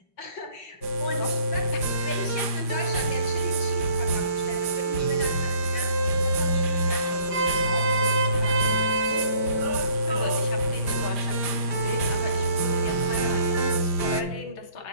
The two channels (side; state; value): right; late; 5.0 ms